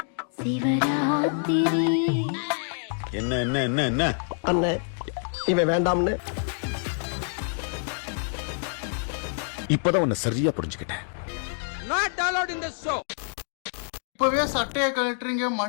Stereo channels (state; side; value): silent; right; 60 dB below the other